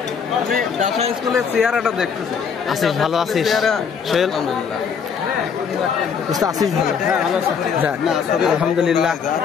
আমি ডাসা স্কুলের চেহারাটা দেখতেছি। আছিস ভালো আছিস? সোহেল আছিস ভালো? আলহামদুলিল্লাহ।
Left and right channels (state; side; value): quieter; right; 6.6 dB